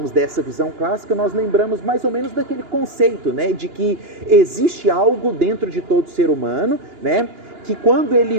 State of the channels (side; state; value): left; late; 2.9 ms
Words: dessa visão clássica, nós lembramos mais ou menos daquele conceito, né? De que existe algo dentro de todo ser humano, né? Que quando